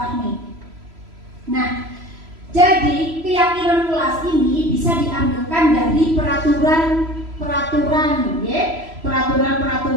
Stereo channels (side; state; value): left; late; 3.0 ms